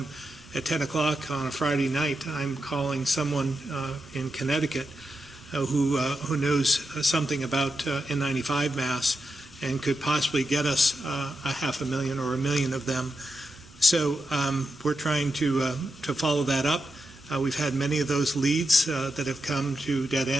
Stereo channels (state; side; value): normal; both; correlation 0.87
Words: at 10 o'clock on a Friday night, I'm calling someone in Connecticut who knows something about N95 masks and could possibly get us 500,000 or 1 million of them. So we're trying to follow that up. We've had many of those leads that have come to dead